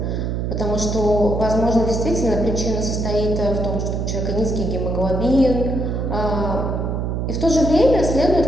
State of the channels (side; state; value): right; noise; hum, 1 dB below the sound